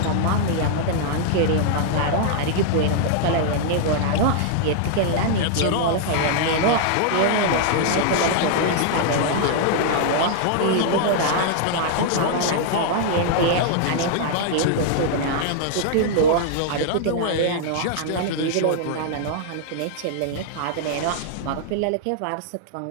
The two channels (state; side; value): different; both; correlation -0.01